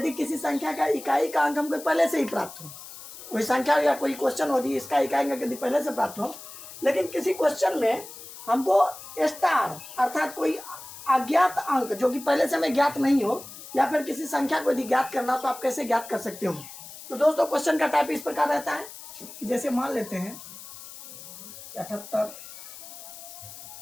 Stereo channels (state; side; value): noise; left; hiss, 14 dB below the sound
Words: किसी संख्या का इकाई का अंक हमको पहले से ही प्राप्त हो, कोई संख्या या कोई क्वेश्चन हो इसका इकाई अंक यदि पहले से प्राप्त हो, लेकिन किसी क्वेश्चन में हमको स्टार अर्थात कोई अज्ञात अंक जो कि पहले से हमें ज्ञात नहीं हो, या फिर किसी संख्या को यदि ज्ञात करना तो आप कैसे ज्ञात कर सकते हो। तो दोस्तों, क्वेश्चन का टाइप इस प्रकार रहता है, जैसे मान लेते हैं 78,